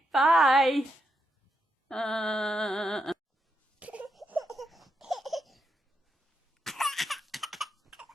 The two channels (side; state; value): both; normal; correlation 0.83